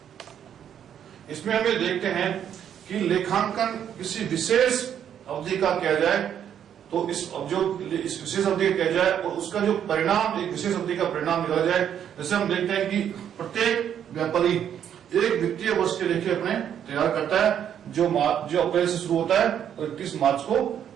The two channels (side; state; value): left; quieter; 9.3 dB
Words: हैं, कि लेखांकन किसी विशेष अवधि का किया जाए तो इस विशेष अवधि का किया जाए और उसका जो परिणाम, एक विशेष अवधि का परिणाम निकाला जाए। जैसे हम देखते हैं कि प्रत्येक व्यापारी एक वित्तीय वर्ष के लेखे अपने तैयार करता है जो अप्रैल से शुरू होता है और 31 मार्च को